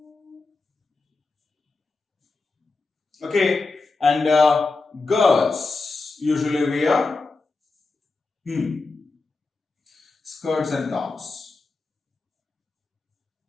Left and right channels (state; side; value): quieter; right; 3.7 dB